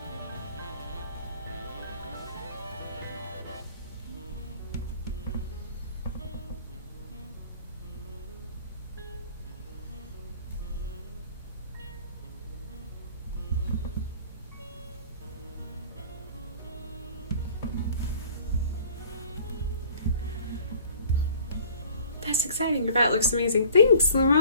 That's exciting. Your bat looks amazing. Thanks,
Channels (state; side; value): inverted; both; correlation -0.49